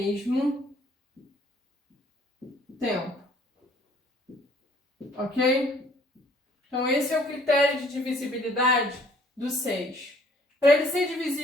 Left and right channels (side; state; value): both; normal; correlation 0.59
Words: tempo. Ok? Então, esse é o critério de divisibilidade do 6. Para ele ser